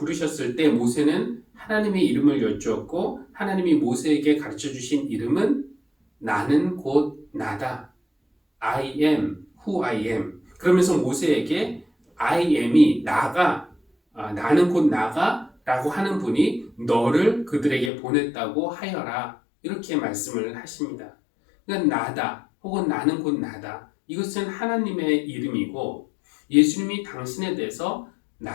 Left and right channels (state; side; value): drops out; right; at 17.9 s